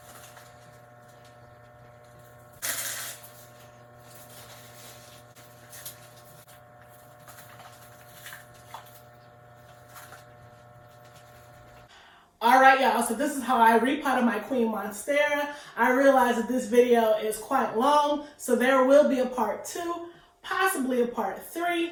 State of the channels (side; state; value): both; identical; correlation 1.00